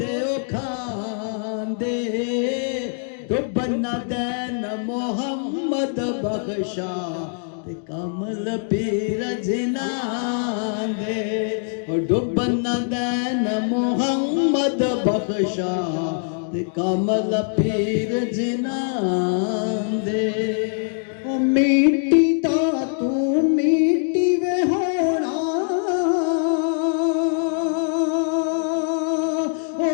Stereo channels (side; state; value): right; silent; 64 dB below the other